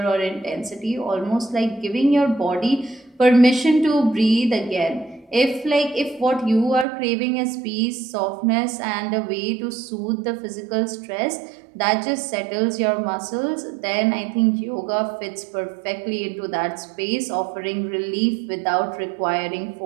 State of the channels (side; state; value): left; drops out; at 6.9 s